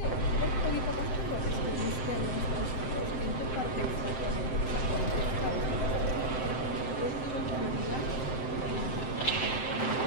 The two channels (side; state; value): right; late; 7.7 ms